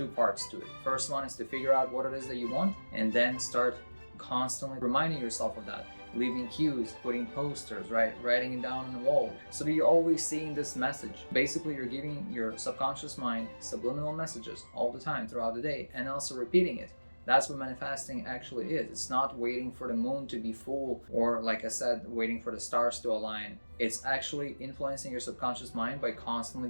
parts to it. First one is to figure out what it is that you want, and then start constantly reminding yourself of that. Leaving cues, putting posters, right? Writing it down on the wall. So that you're always seeing this message. Basically, you're giving your subconscious mind subliminal messages all the time throughout the day and also repeating it. That's what manifesting actually is. It's not waiting for the moon to be full or, like I said, waiting for the stars to align. It's actually influencing your subconscious mind by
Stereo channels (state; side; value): inverted; both; correlation -1.00